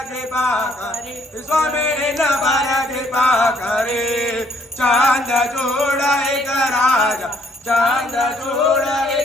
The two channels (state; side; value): normal; both; correlation 0.67